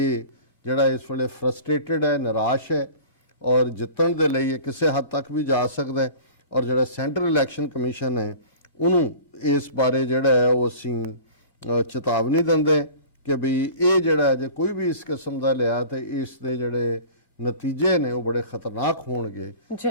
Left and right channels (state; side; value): inverted; both; correlation -0.41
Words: ਜਿਹੜਾ ਇਸ ਵੇਲੇ ਫਰਸਟ੍ਰੇਟਡ ਹੈ, ਨਿਰਾਸ਼ ਹੈ ਔਰ ਜਿੱਤਣ ਦੇ ਲਈ ਇਹ ਕਿਸੇ ਹੱਦ ਤੱਕ ਵੀ ਜਾ ਸਕਦਾ ਹੈ, ਔਰ ਜਿਹੜਾ ਸੈਂਟਰਲ ਇਲੈਕਸ਼ਨ ਕਮਿਸ਼ਨ ਹੈ ਉਹਨੂੰ ਇਸ ਬਾਰੇ ਜਿਹੜਾ ਹੈ ਉਹ ਅਸੀਂ ਚੇਤਾਵਨੀ ਦਿੰਦੇ ਕਿ ਵੀ ਇਹ ਜਿਹੜਾ ਜੇ ਕੋਈ ਵੀ ਇਸ ਕਿਸਮ ਦਾ ਲਿਆ ਤੇ ਇਸ ਦੇ ਜਿਹੜੇ ਨਤੀਜੇ ਨੇ ਉਹ ਬੜੇ ਖਤਰਨਾਕ ਹੋਣਗੇ,